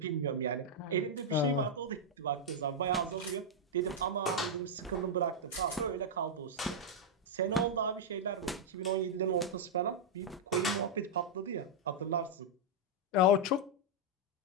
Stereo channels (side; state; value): both; normal; correlation -0.05